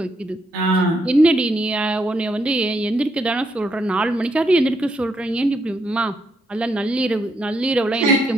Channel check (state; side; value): normal; both; correlation 0.77